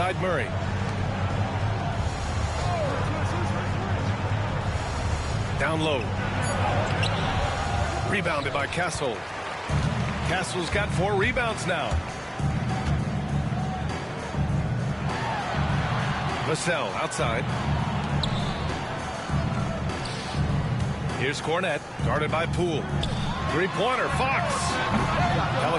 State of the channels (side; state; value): both; identical; correlation 1.00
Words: Murray. Down low. Rebounded by Castle. Castle's got 4 rebounds now. Vassell outside. Here's Cornette, guarded by Poole. Three-pointer, Fox.